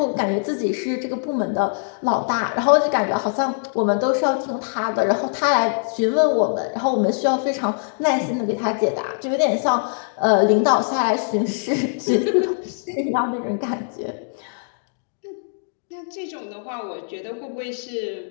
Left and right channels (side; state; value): right; silent; digital silence